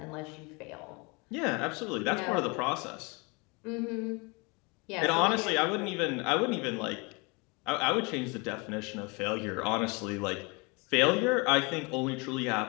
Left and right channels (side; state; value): right; quieter; 28.9 dB